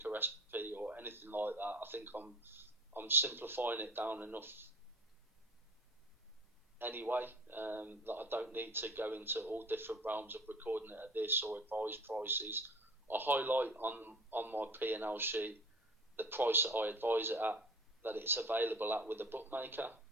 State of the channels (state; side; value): normal; both; correlation 0.42